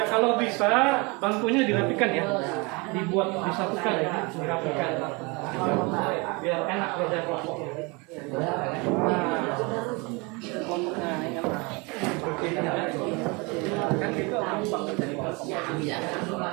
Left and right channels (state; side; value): quieter; left; 28.2 dB